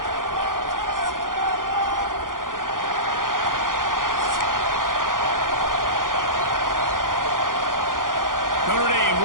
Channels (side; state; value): left; late; 0.90 ms